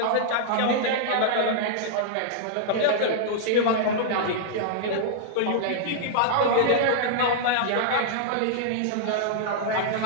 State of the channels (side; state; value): both; different; correlation -0.02